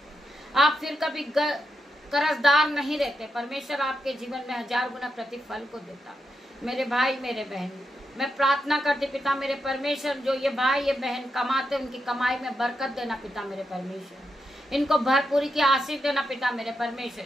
आप फिर कभी कर्जदार नहीं रहते। परमेश्वर आपके जीवन में 1000 गुना प्रतिफल को देता। मेरे भाई मेरे बहन, मैं प्रार्थना करती पिता मेरे परमेश्वर, जो ये भाई ये बहन कमाते, उनकी कमाई में बरकत देना पिता मेरे परमेश्वर। इनको भरपूरी की आशीष देना पिता मेरे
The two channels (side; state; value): both; normal; correlation 0.85